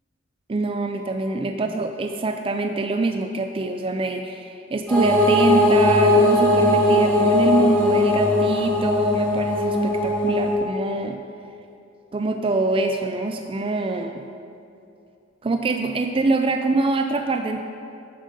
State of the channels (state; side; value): normal; both; correlation 0.41